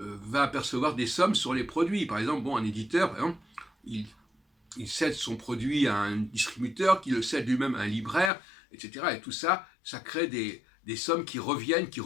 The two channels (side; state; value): right; drops out; at 8.3 s